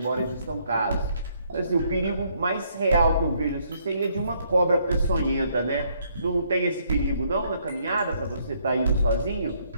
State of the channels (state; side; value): inverted; both; correlation -0.69